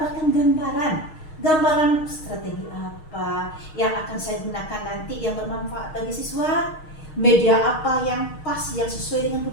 gambaran strategi apa yang akan saya gunakan nanti yang bermanfaat bagi siswa, media apa yang pas, yang sesuai dengan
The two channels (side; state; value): right; late; 6.4 ms